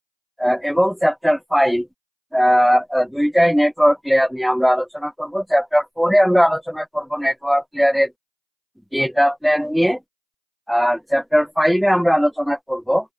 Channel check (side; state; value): both; identical; correlation 1.00